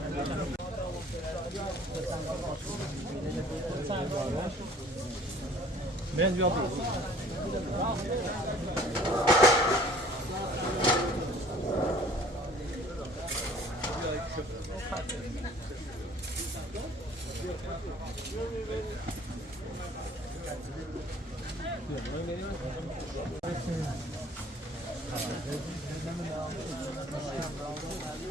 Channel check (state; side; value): normal; both; correlation 0.52